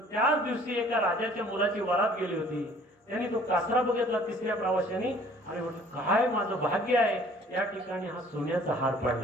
त्याच दिवशी एका राजाच्या मुलाची वरात गेली होती. त्यांनी तो कासरा बघितला तिसऱ्या प्रवाशाने, आणि म्हटलं काय माझं भाग्य आहे, या ठिकाणी हा सोन्याचा हार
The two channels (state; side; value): normal; both; correlation 0.54